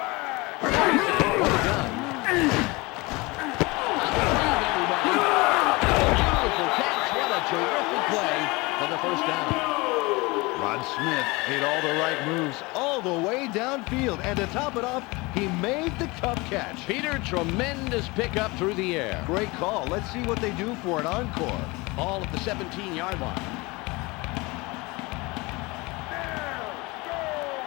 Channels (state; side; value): quieter; right; 24.3 dB